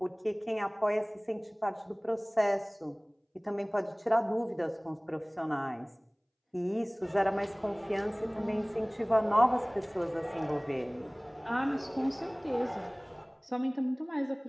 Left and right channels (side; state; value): both; identical; correlation 1.00